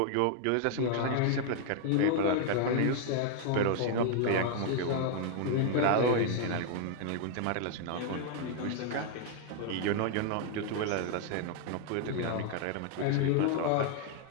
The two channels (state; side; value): different; both; correlation 0.00